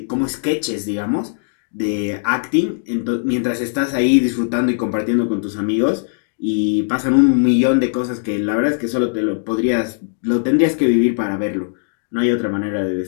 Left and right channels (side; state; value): right; silent; digital silence